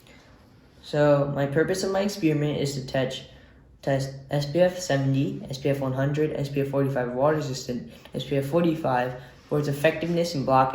So my purpose of my experiment is to test SPF 70, SPF 100, SPF 45 water resistant, SPF 45 for its effectiveness in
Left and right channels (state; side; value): identical; both; correlation 1.00